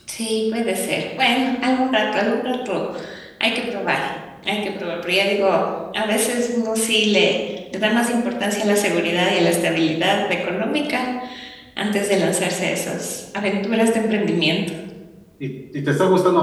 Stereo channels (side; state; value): both; identical; correlation 1.00